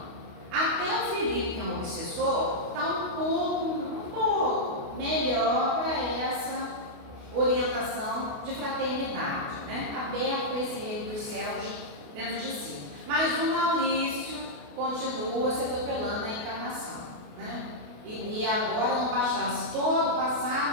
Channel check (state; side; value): late; left; 28 ms